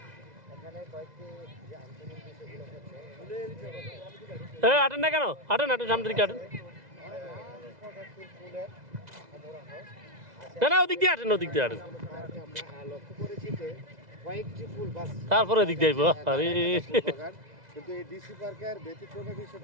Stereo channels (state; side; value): late; left; 2.0 ms